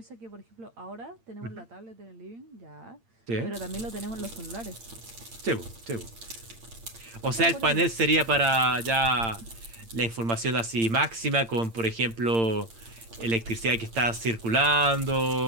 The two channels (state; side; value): late; left; 8.8 ms